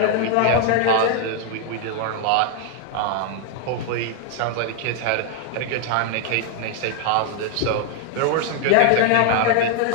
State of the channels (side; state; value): both; different; correlation 0.00